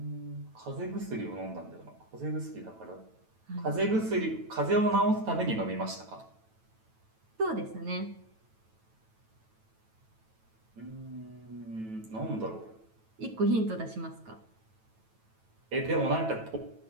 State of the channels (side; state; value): left; late; 9.1 ms